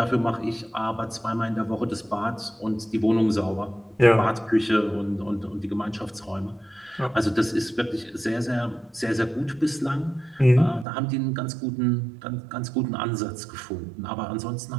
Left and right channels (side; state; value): left; drops out; at 10.9 s